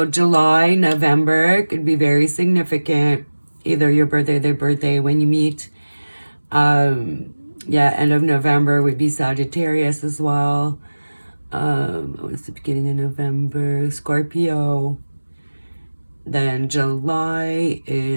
July, November could be very significant. Either your birthday, their birthday when you meet. Yeah, end of November would be Sagittarius as well. What's the beginning of November? Scorpio. Then July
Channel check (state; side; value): inverted; both; correlation -1.00